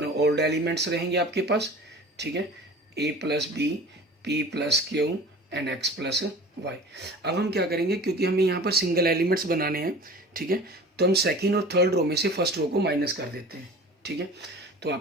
एलिमेंट्स रहेंगे आपके पास, ठीक है, a plus b, p plus q and x plus Y. अब हम क्या करेंगे, क्योंकि हमें यहाँ पर सिंगल एलिमेंट्स बनाने हैं, ठीक है, तो हम सेकेंड और थर्ड रो में से फर्स्ट रो को माइनस कर देते हैं, ठीक है। तो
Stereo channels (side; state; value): both; normal; correlation 0.41